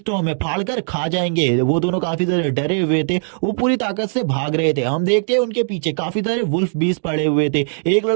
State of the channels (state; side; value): silent; left; digital silence